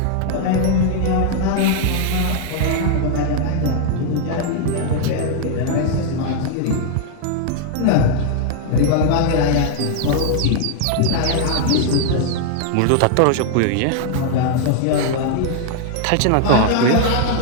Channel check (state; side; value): different; both; correlation 0.00